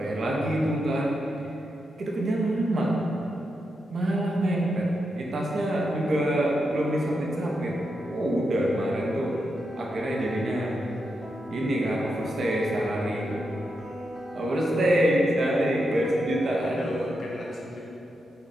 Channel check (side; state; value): both; normal; correlation 0.85